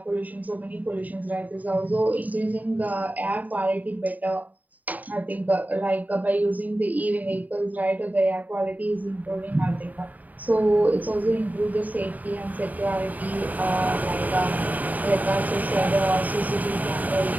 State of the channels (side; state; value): left; late; 0.078 ms